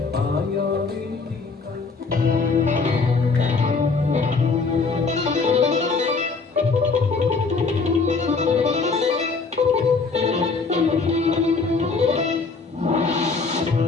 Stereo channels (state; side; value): quieter; right; 4.4 dB